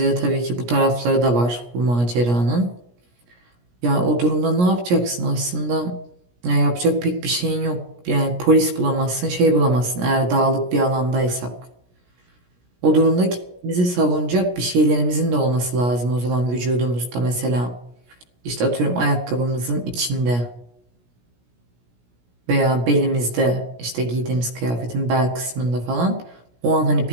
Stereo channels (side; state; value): left; late; 17 ms